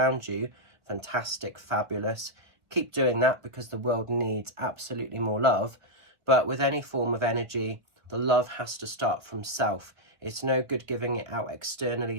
you. Fantastic, fabulous. Keep doing that because the world needs absolutely more love. But with any form of energy, the love has to start from self. It's no good giving it out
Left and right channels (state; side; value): late; left; 1.7 ms